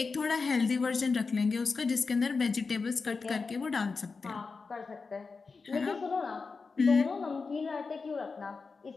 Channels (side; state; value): right; quieter; 4.5 dB